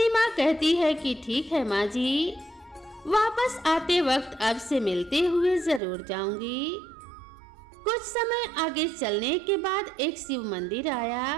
कहती है कि ठीक है माँ जी, वापस आते वक्त अब से मिलते हुए जरूर जाऊंगी। कुछ समय आगे चलने के बाद एक शिव मंदिर आया।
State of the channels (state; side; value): drops out; left; at 5.8 s